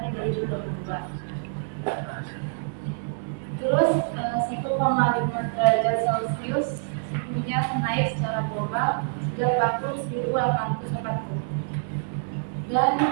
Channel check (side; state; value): left; silent; digital silence